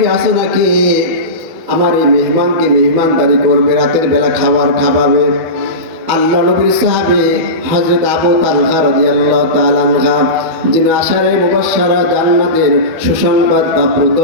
আছে নাকি আমার এই মেহমানকে মেহমানদারি করবে, রাতের বেলা খাবার খাওয়াবে? আল্লাহ নবীর সাহাবী হযরত আবু তালহা রাদিয়াল্লাহু তাআলা আনহা, যিনি আশারে মুবাশশারা জান্নাতের সুসংবাদ প্রাপ্ত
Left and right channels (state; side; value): late; left; 12 ms